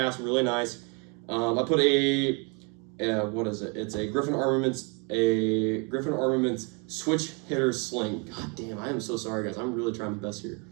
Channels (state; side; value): quieter; left; 33.7 dB